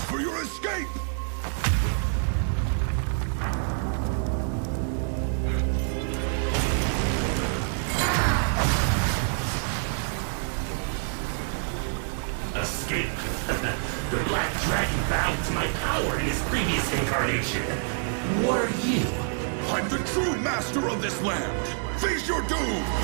for your escape! Escape. The Black Dragon bowed to my power in his previous incarnation. What are you? I'm the true master of this land! Face your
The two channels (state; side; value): silent; left; 60 dB below the other